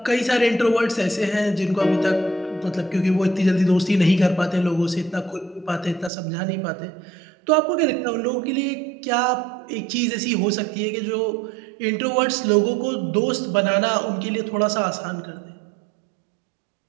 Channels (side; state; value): left; drops out; at 6.1 s